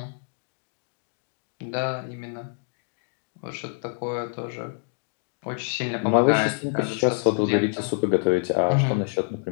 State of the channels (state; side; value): silent; right; 61 dB below the other